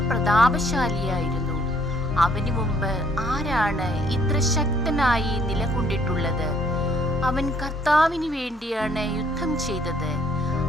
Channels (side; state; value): both; normal; correlation 0.64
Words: പ്രതാപശാലിയായിരുന്നു! അവന് മുമ്പ് ആരാണ് ഇത്ര ശക്തനായി നിലകൊണ്ടിട്ടുള്ളത്? അവൻ കർത്താവിന് വേണ്ടിയാണ് യുദ്ധം ചെയ്തത്.